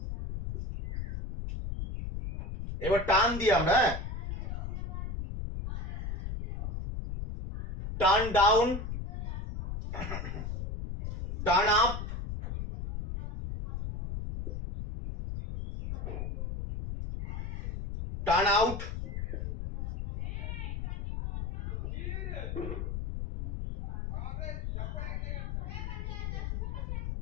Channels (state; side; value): noise; left; rumble, 4 dB below the sound